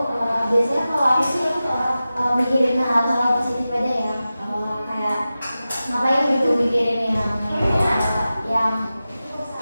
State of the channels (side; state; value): both; inverted; correlation -0.94